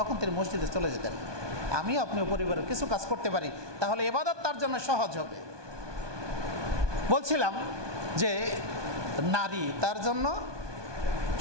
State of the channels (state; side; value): late; left; 1.2 ms